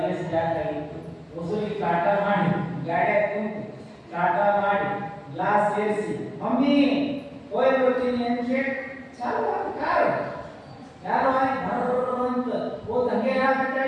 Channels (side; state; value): both; identical; correlation 1.00